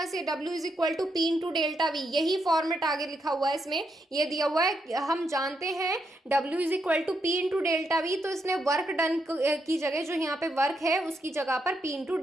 से, W is equal to P into delta V, यही फॉर्मेट आगे लिखा हुआ है इसमें, ये दिया हुआ है। हम जानते हैं W is equal to P into delta V, तो इसने वर्क डन की जगह जो यहाँ पे वर्क है उसकी जगह पर P इंटू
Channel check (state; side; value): normal; both; correlation 0.80